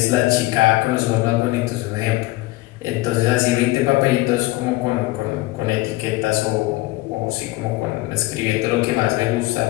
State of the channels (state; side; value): quieter; right; 19.5 dB